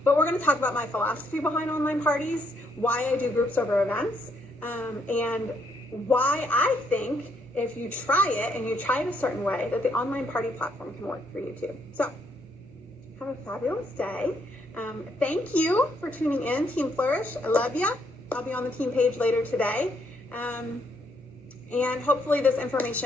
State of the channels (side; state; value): both; normal; correlation 0.73